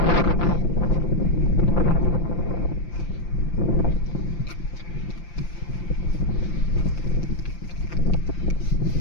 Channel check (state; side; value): late; right; 5.8 ms